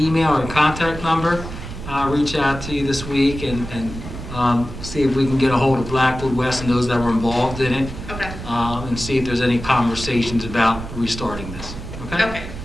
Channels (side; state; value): right; noise; rumble, 10 dB below the sound